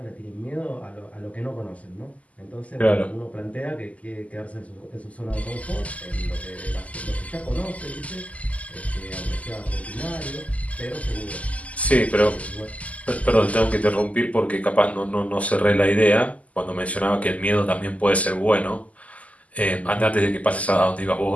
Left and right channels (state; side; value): late; right; 0.071 ms